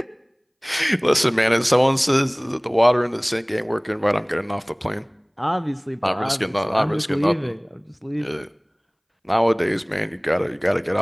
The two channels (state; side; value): identical; both; correlation 1.00